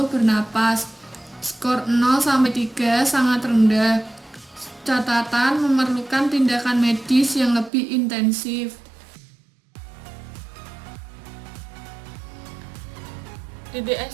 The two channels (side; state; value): left; drops out; at 7.7 s